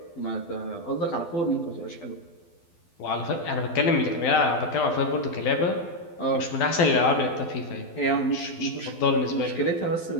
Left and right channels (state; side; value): late; right; 12 ms